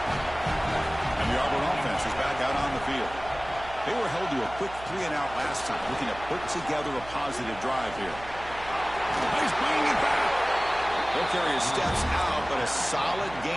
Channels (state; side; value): noise; right; hum, 16 dB below the sound